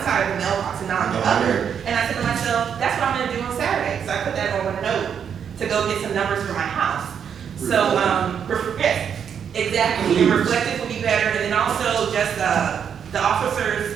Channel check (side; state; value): left; quieter; 7.8 dB